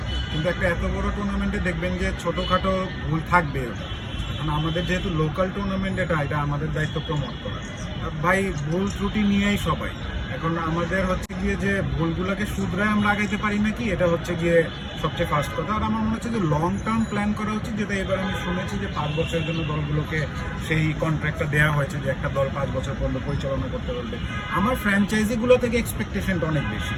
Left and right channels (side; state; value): both; identical; correlation 1.00